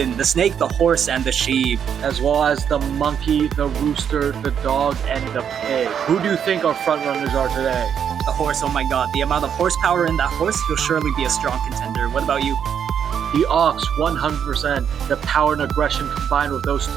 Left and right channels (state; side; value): quieter; left; 8.1 dB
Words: the snake, the horse, and the sheep. As well as the monkey, the rooster, the dog, and the pig. Who do you think our front runners are today? The horse, oh my god, the amount of horsepower in that horse, he'll surely be a strong contender. What about you? The ox, 100%. The power and aggression combined with those